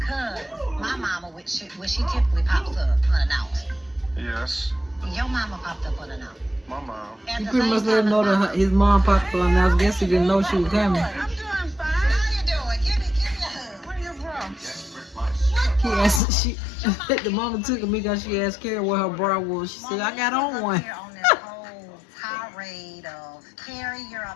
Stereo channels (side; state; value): right; drops out; at 16.2 s